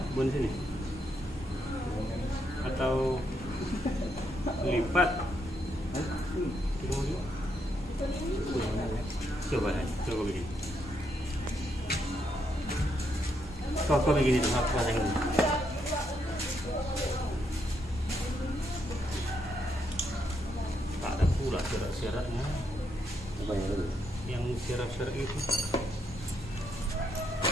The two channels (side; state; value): both; normal; correlation 0.78